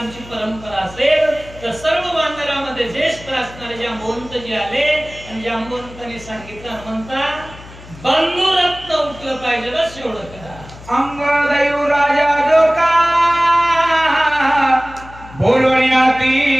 परंपरा असेल, तर सर्व वानरामध्ये ज्येष्ठ असणारे जांबवंत जे आले आणि जांबवंतांनी सांगितलं हनुमंता बंधुरत्न उठलं पाहिजे, बस एवढं करा. अंगदैव राजा जो का बोलण्याती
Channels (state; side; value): noise; left; hum, 18 dB below the sound